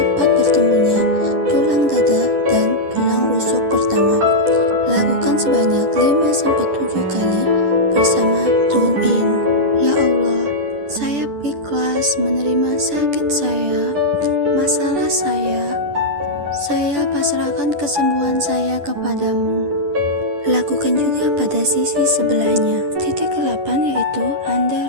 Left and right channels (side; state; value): left; late; 10 ms